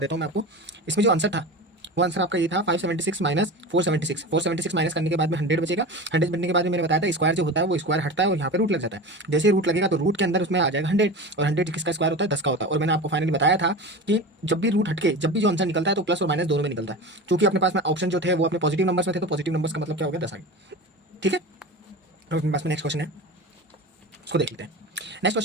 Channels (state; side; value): normal; both; correlation 0.29